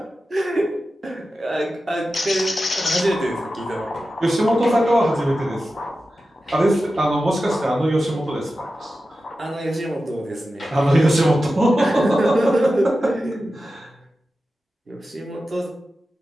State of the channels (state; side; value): normal; both; correlation 0.93